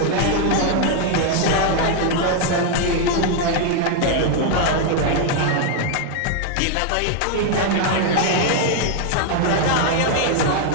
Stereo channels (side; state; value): both; different; correlation 0.01